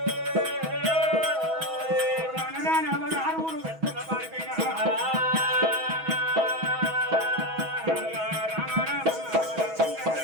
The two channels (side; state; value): left; late; 6.2 ms